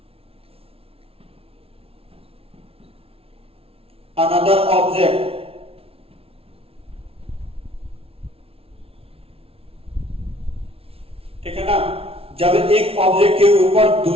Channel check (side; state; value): left; late; 0.27 ms